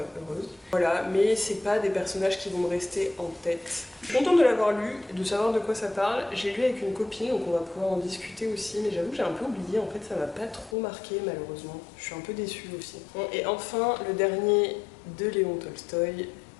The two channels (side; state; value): right; drops out; at 10.8 s